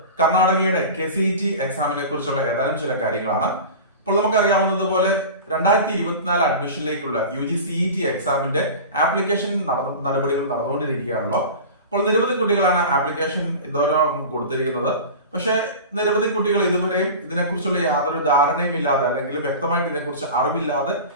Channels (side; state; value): both; inverted; correlation -0.33